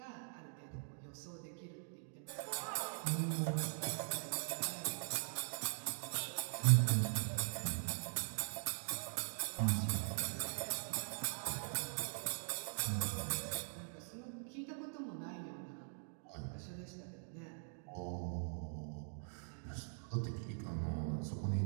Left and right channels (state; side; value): silent; left; digital silence